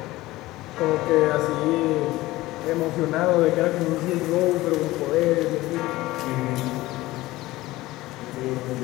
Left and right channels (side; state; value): right; quieter; 18.2 dB